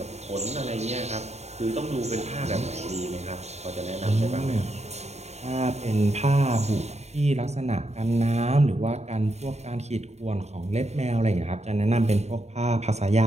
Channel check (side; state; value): left; late; 0.32 ms